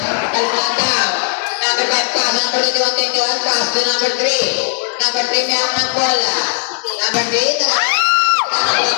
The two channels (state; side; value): silent; right; digital silence